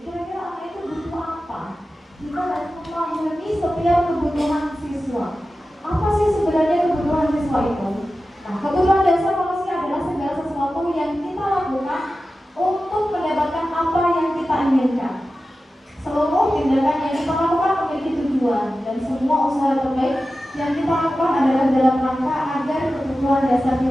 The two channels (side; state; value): both; normal; correlation 0.94